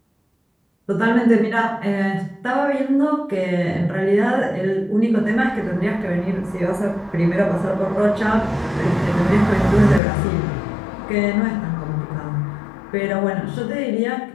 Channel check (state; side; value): drops out; right; at 10.0 s